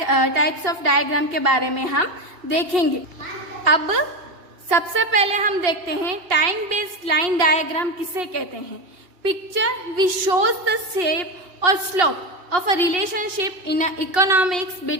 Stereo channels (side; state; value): left; late; 2.8 ms